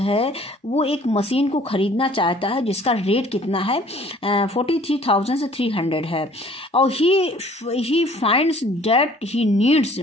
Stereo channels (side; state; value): both; normal; correlation 0.54